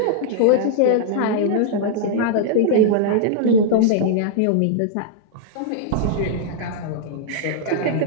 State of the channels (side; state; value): both; different; correlation -0.01